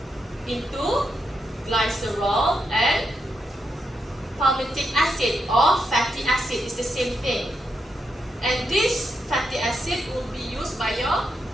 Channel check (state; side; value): normal; both; correlation 0.83